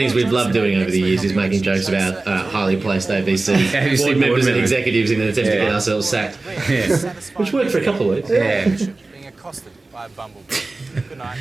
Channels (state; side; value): quieter; left; 3.3 dB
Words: we've loved doing over the years is making jokes about highly placed ABC board members and executives in an attempt to get ourselves sacked. Yeah. Which worked for a couple of weeks. Yeah. Being accosted by a bumblebee. Good night.